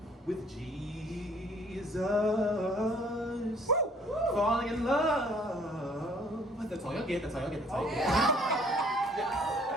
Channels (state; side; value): normal; both; correlation 0.58